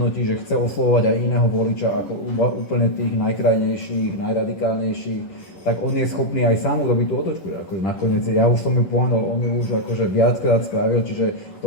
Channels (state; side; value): late; right; 11 ms